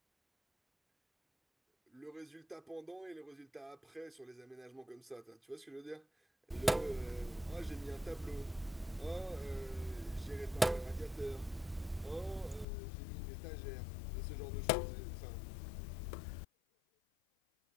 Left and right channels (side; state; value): right; drops out; at 12.7 s